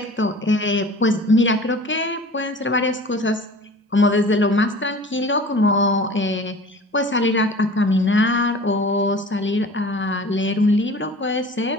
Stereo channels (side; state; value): both; normal; correlation 0.42